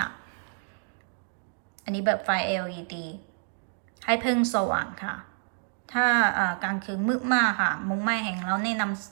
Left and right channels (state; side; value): silent; left; 59 dB below the other